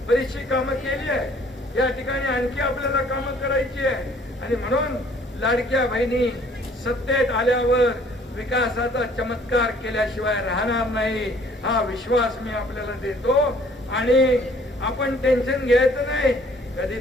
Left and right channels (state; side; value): normal; both; correlation 0.58